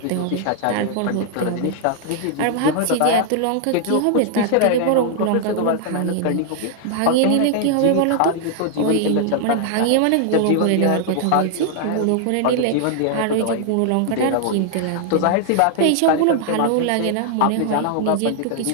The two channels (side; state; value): both; different; correlation 0.00